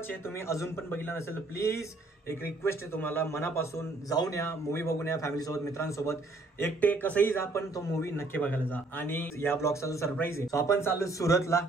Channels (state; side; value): quieter; left; 3.1 dB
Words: आहे. तुम्ही अजून पण बघितला नसेल प्लीज एक रिक्वेस्ट आहे तुम्हाला मनापासून, जाऊन या, मूवी बघून या फॅमिलीसोबत, मित्रांसोबत, एकटे कसंही जा, पण तो मूवी नक्की बघायला जा. आणि या ब्लॉगचा जो सरप्राईज आहे, आपण चाललो सुरतला